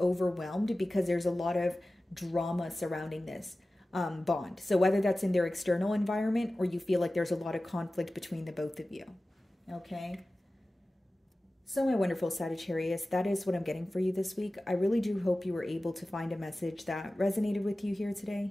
overwhelmed because there's a lot of drama surrounding this bond. So whether that's in their external environment or you feel like there's a lot of conflict between the both of you. Okay. So my wonderful Sagittarius, that is what I'm getting for you this week. I really do hope you were able to find a message that resonated with you here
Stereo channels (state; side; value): normal; both; correlation 0.96